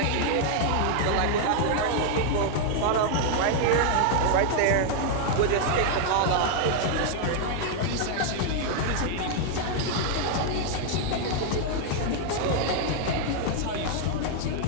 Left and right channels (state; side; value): different; both; correlation 0.00